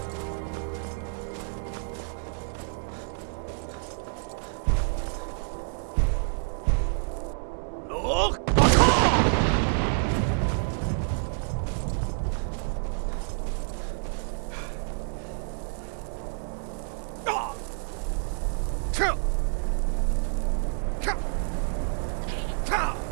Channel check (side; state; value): left; silent; 59 dB below the other